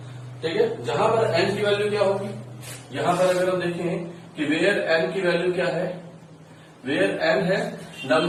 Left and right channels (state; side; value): identical; both; correlation 1.00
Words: ठीक है। जहां पर n की वैल्यू क्या होगी, यहां पर अगर हम देखें कि वेयर n की वैल्यू क्या है, वेयर n है